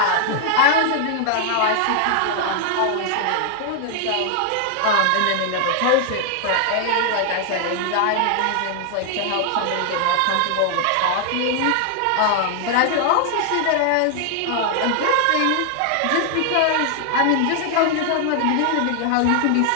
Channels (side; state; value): both; different; correlation 0.00